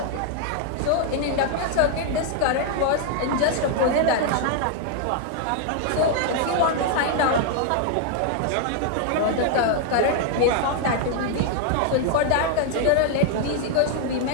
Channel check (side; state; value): both; different; correlation 0.00